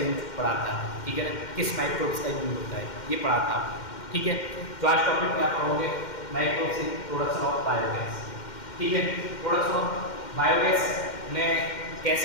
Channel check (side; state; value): right; late; 2.1 ms